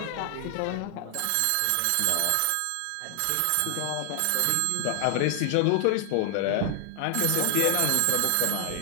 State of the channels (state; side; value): different; both; correlation 0.00